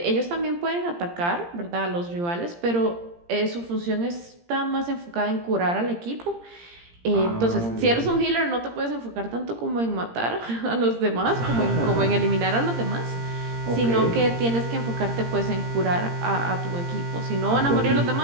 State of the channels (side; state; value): left; late; 17 ms